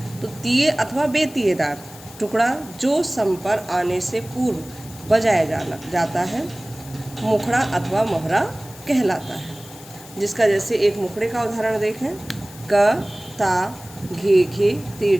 तो तीय अथवा बेतीयेदार टुकड़ा जो सम पर आने से पूर्व बजाया जाता है मुखड़ा अथवा मोहरा कहलाता है। जिसका जैसे एक मुखड़े का उदाहरण देखें, क ता घे घे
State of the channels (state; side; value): noise; left; hiss, 19 dB below the sound